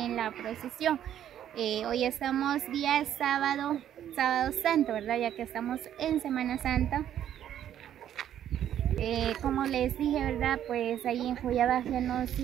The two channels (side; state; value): left; quieter; 10.7 dB